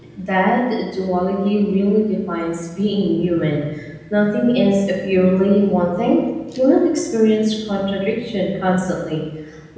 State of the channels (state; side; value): identical; both; correlation 1.00